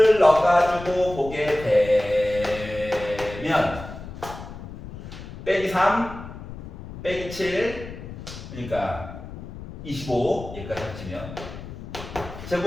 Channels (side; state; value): left; noise; rumble, 12 dB below the sound